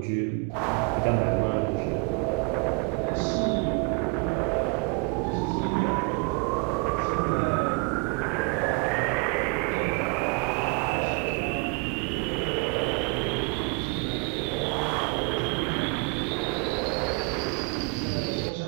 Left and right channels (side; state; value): left; quieter; 33.7 dB